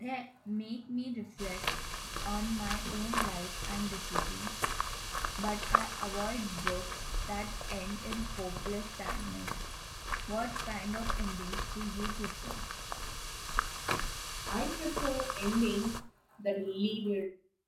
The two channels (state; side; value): identical; both; correlation 1.00